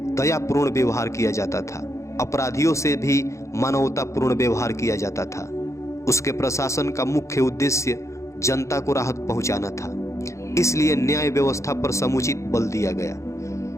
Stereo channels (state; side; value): late; right; 0.14 ms